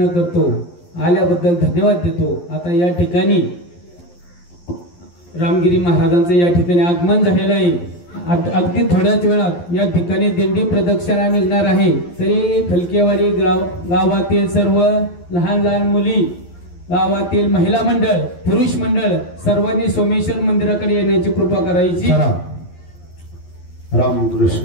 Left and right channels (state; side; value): late; right; 11 ms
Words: करतो. आल्याबद्दल धन्यवाद देतो. आता या ठिकाणी रामगिरी महाराजांचं या ठिकाणी आगमन झालेलं आहे. अगदी थोड्याच वेळात या ठिकाणी दिंडी प्रदक्षिणा निघणार आहे. तरी फलकेवाडी गावातील सर्व लहान लहान मुली, गावातील महिला मंडळ, पुरुष मंडळ सर्वांनी सोमेश्वर मंदिराकडे येण्याची कृपा करायची.